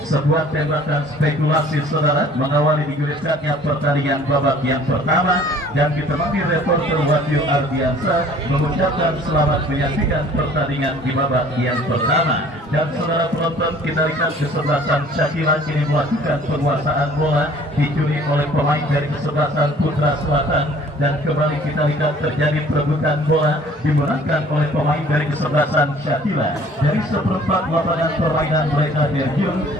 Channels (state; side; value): normal; both; correlation 0.53